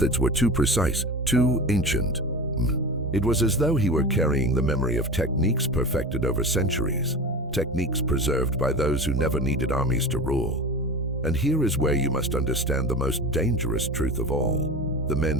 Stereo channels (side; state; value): both; normal; correlation 0.30